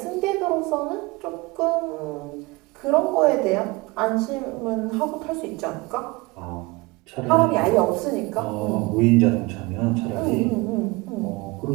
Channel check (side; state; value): left; quieter; 23.9 dB